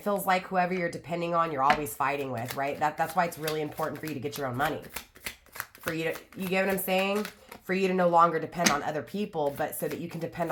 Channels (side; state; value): both; identical; correlation 1.00